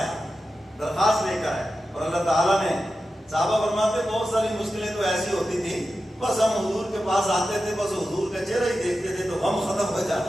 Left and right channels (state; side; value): normal; both; correlation 0.92